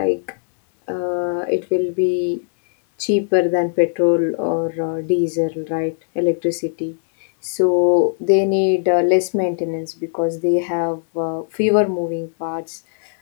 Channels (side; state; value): right; silent; digital silence